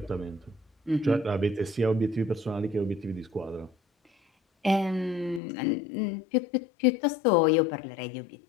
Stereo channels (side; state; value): right; drops out; at 5.4 s